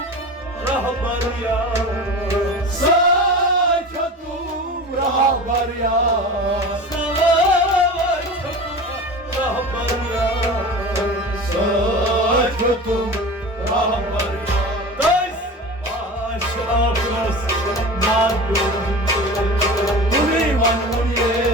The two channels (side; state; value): both; normal; correlation 0.33